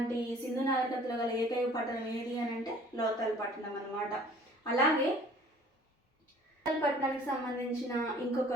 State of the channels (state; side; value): normal; both; correlation 0.51